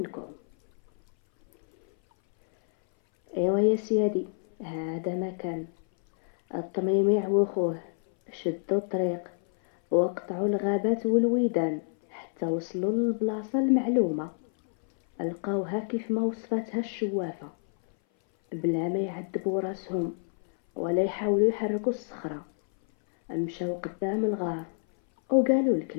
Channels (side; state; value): right; silent; 58 dB below the other